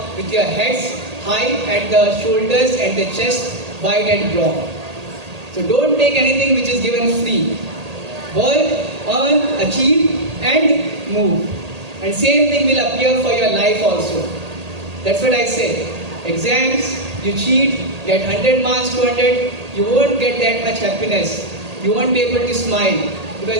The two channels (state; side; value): late; left; 1.8 ms